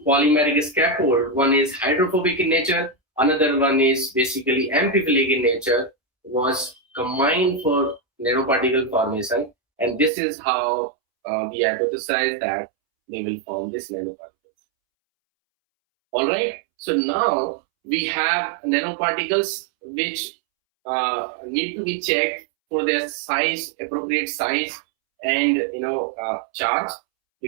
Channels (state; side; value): drops out; left; at 10.1 s